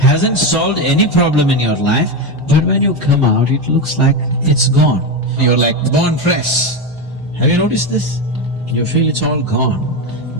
solved any problem in your life, but when you come out, it looks like it's gone. You're like born fresh. Have you noticed this? You feel it's all gone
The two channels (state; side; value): normal; both; correlation 0.13